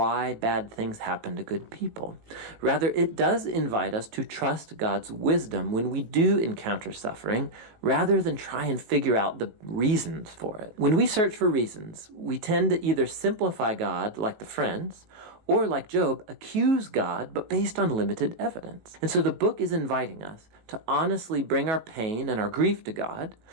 bad things happen to good people. Rather, it does invite us to trust God's wisdom when we do encounter suffering, rather than try and figure out the reasons for it. When we search for reasons, we tend to either simplify God like the friends, or like Job, accuse God, but based on limited evidence. And so the book is inviting us to honestly bring our pain and our grief to God,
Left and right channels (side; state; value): left; late; 18 ms